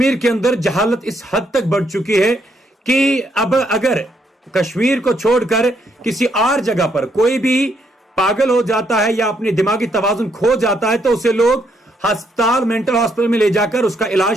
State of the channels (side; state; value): both; normal; correlation 0.74